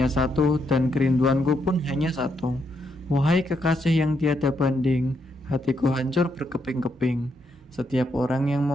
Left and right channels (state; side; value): normal; both; correlation 0.78